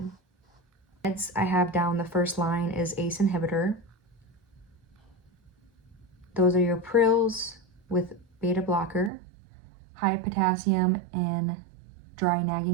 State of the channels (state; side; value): drops out; left; at 9.1 s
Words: Meds I have down the first line is ACE inhibitor. Those are your Prils with beta blocker, high potassium and dry